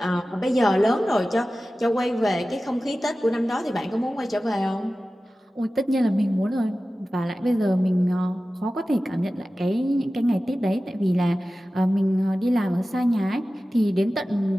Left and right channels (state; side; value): normal; both; correlation 0.95